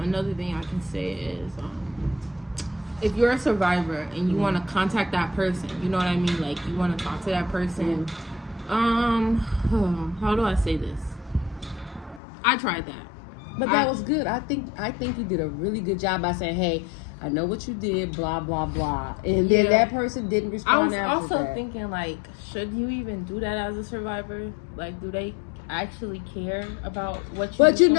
thing I can say is, if you're a survivor and you want to contact that person, you know what I mean? Like, you want to talk to that person. How do I say this? I tried that. But that was good. I think you did a really good job by saying, hey, I know what you did, blah, blah, blah. And then that person didn't respond after that. I was also thinking, like, should you even do that as a survivor? Like, do they actually care about what you But you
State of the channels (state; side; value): drops out; right; at 12.2 s